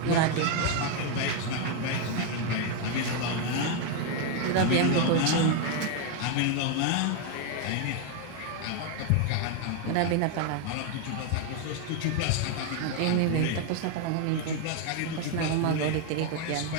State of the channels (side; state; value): both; different; correlation 0.01